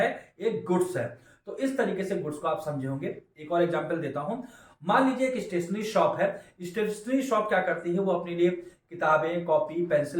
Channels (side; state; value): both; identical; correlation 1.00